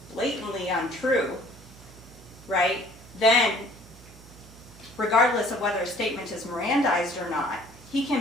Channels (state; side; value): noise; right; hum, 21 dB below the sound